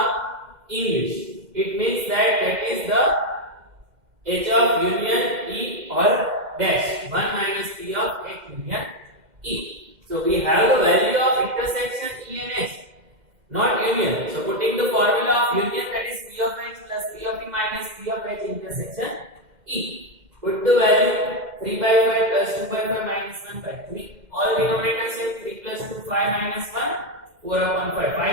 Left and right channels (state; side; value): late; left; 2.1 ms